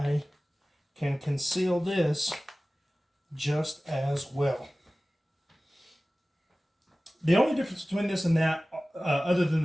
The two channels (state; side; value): normal; both; correlation 0.97